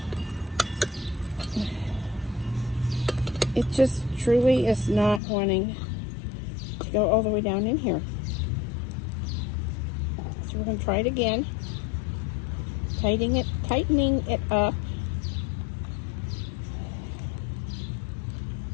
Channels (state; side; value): drops out; right; at 5.2 s